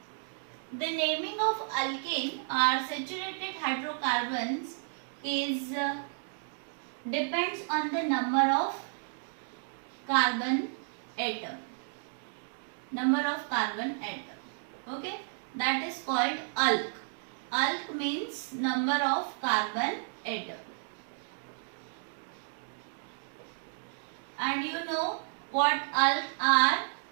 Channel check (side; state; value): left; silent; digital silence